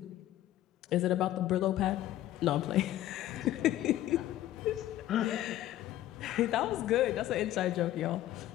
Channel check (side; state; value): right; quieter; 13.8 dB